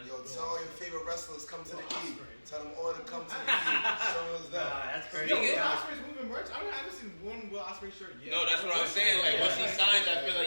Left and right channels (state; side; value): inverted; both; correlation -1.00